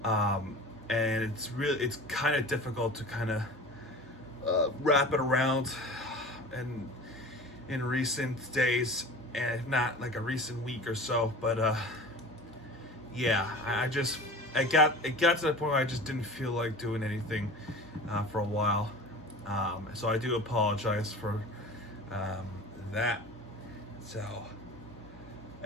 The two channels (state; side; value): normal; both; correlation 0.38